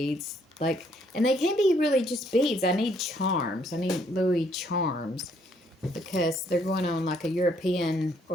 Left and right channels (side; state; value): both; normal; correlation 0.68